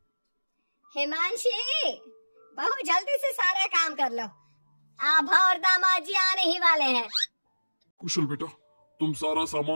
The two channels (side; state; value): both; inverted; correlation -1.00